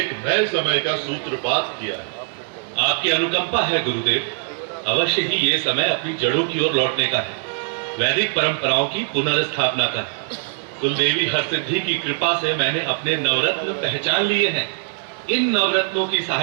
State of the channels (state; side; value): silent; left; digital silence